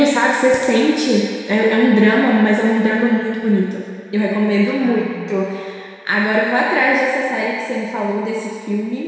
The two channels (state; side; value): identical; both; correlation 1.00